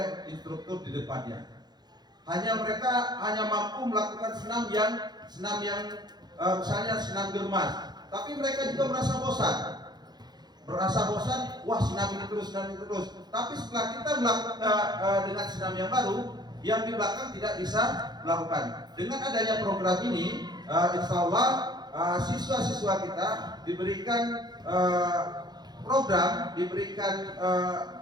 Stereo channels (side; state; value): left; late; 0.20 ms